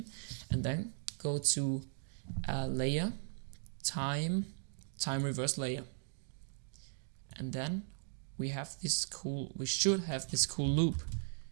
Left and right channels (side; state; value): left; silent; digital silence